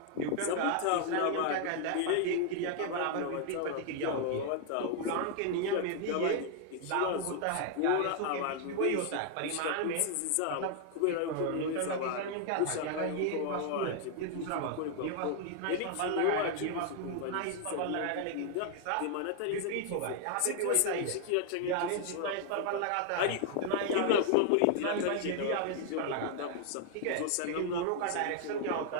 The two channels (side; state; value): both; different; correlation 0.00